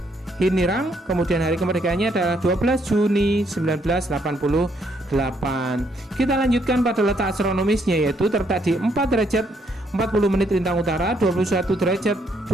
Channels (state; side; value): normal; both; correlation 0.71